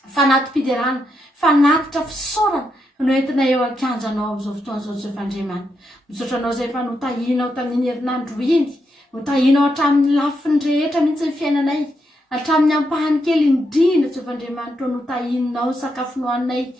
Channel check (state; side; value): normal; both; correlation 0.82